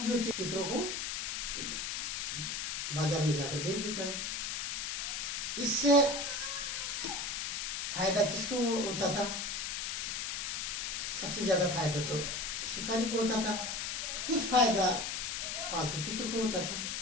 जो तीतरों को बाजार में जाकर बेच देता। इससे फायदा किसको होता था? सबसे ज्यादा फायदा तो शिकारी को होता था। कुछ फायदा पालतू तीतर को होता था।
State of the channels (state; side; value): noise; left; hiss, 2 dB below the sound